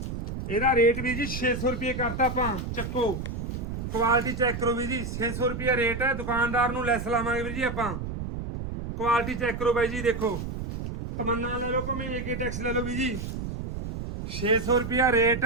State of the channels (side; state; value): right; noise; rumble, 6 dB below the sound